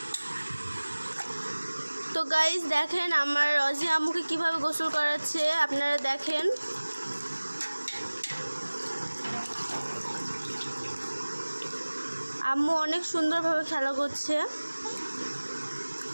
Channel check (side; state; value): both; inverted; correlation -1.00